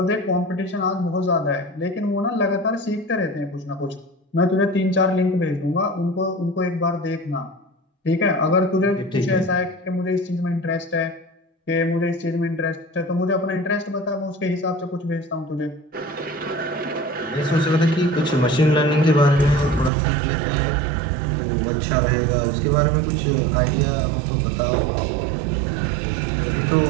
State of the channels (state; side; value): drops out; left; at 19.9 s